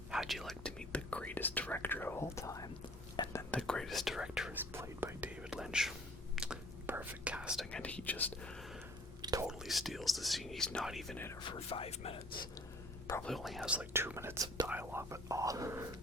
How'd you like to meet the greatest director of all time? And then the greatest director is played by David Lynch. Perfect casting, and he just totally steals the scene. He's not even in it for 5 minutes. Probably only has like 2 minutes of dialogue, but oh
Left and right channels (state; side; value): normal; both; correlation 0.52